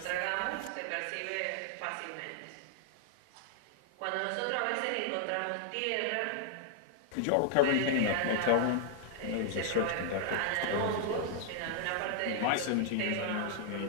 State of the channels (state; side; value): different; both; correlation 0.00